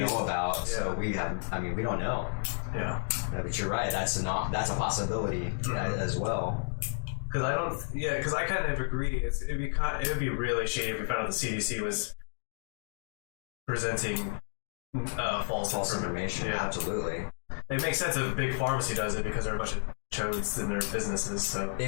about, so we don't know. Yeah. But you're right, that's a possibility as well. Because I kind of agree. It would be really shady if we found out the CDC was presenting false information. Yeah. Absolutely. It makes sense if a big pharmacy does it because they're a bunch of chodes in their businesses. So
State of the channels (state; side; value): silent; right; 57 dB below the other